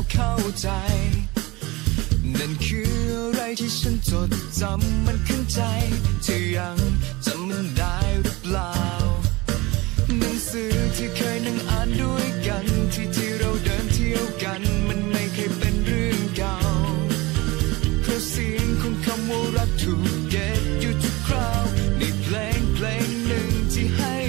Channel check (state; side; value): quieter; left; 22.5 dB